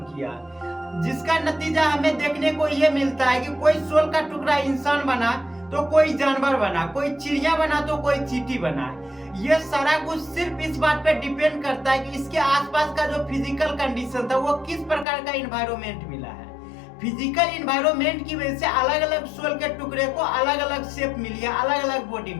किया, जिसका नतीजा हमें देखने को ये मिलता है कि कोई सोल का टुकड़ा इंसान बना तो कोई जानवर बना, कोई चिड़िया बना तो कोई चींटी बना। ये सारा कुछ सिर्फ इस बात पे डिपेंड करता है कि इसके आसपास का जो फिजिकल कंडीशन था वो किस प्रकार का एनवायरनमेंट मिला है। फिजिकल एनवायरनमेंट की वजह से अलग अलग सोल के टुकड़े को अलग अलग शेप मिली है, अलग अलग बॉडी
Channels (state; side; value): drops out; right; at 15.1 s